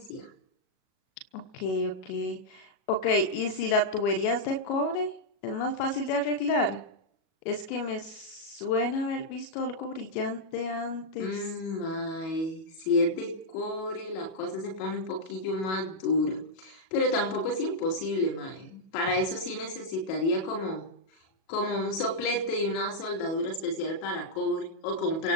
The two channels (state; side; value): late; right; 37 ms